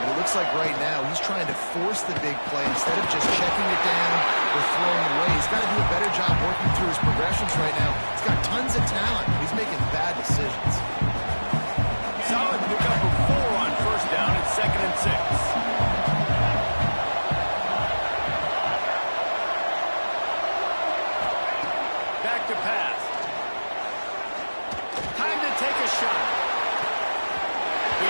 It looks like right now he's trying to force the big play instead of just checking it down or throwing away. He's got to do a better job working through his progressions right now. He's got tons of talent. He's making bad decisions. Solid pickup of 4 on 1st down. It's 2nd and 6. Back to pass. Time to take a shot.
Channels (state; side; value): inverted; both; correlation -1.00